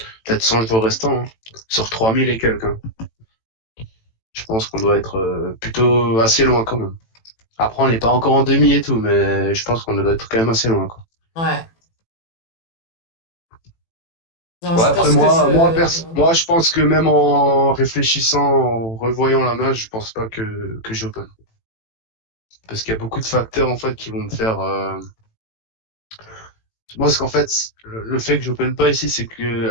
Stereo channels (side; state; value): right; late; 18 ms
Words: Peut-être 100 jours restants, hein. Sur 3000 et quelques, hein. Je pense qu'on doit être plutôt assez loin quand même. Après, on n'est pas encore en demi et tout, mais je pense qu'on doit être quand même assez loin, quoi. Ouais. Non, Ouais, je après pense que moi, je pense que même en réfléchissant, en revoyant la main, je pense pas que j'open. Parce qu'il y a beaucoup de facteurs en fait qui vont me faire. Moi, ce qu'en fait, le fait que j'open pas ici, c'est